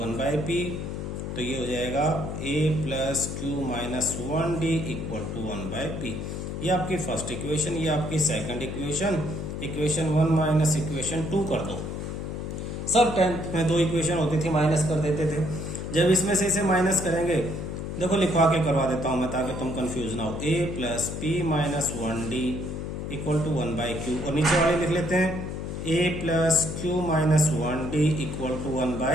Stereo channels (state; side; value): noise; left; hum, 5 dB below the sound